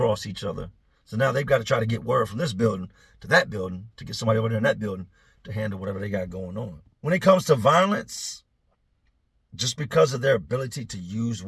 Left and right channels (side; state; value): both; identical; correlation 1.00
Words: each other. So now they've got to try to get word from this building to that building to get somebody over there in that building to handle whatever they got going on. When it comes to violence, just because of their ability to use